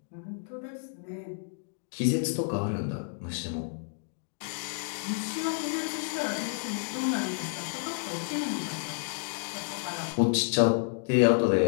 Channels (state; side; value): silent; right; digital silence